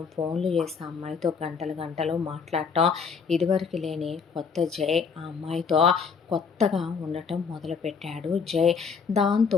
ఫోన్లు చేసి ఆ అమ్మాయితో గంటలు గంటలు మాట్లాడటం, ఇదివరకు లేని కొత్త జై ఆ అమ్మాయితో కొత్తగా ఉండటం మొదలుపెట్టాడు జై. దాంతో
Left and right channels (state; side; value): quieter; right; 5.7 dB